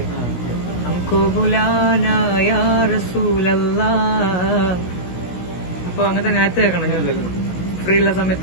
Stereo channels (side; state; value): right; late; 16 ms